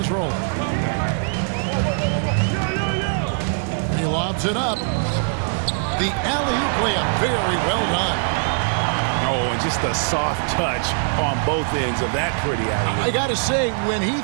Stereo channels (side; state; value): left; silent; 60 dB below the other